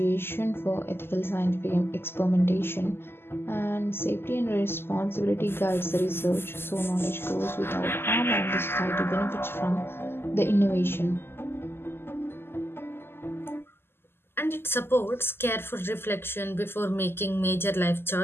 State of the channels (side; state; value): right; late; 0.11 ms